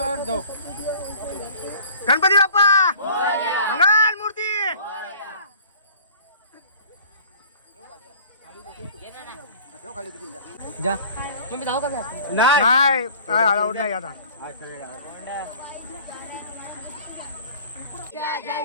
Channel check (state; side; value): inverted; both; correlation -0.48